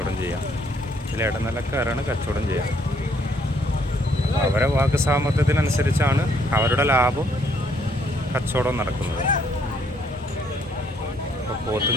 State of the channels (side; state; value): both; normal; correlation 0.68